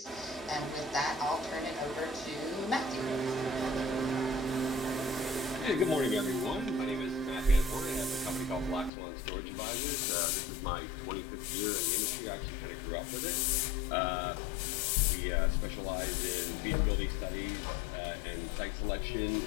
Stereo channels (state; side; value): drops out; right; at 8.9 s